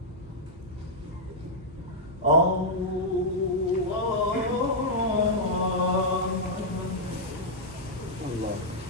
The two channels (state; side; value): normal; both; correlation -0.06